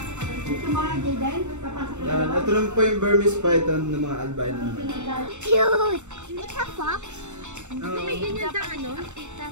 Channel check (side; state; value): left; late; 0.84 ms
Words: Yan, ito lang po yung Burmese python ng mga albino. Cute! It's a fox. May ganyan sa ano?